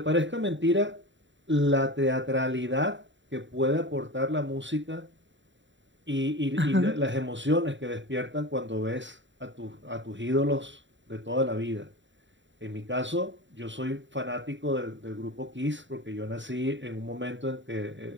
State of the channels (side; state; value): left; late; 0.54 ms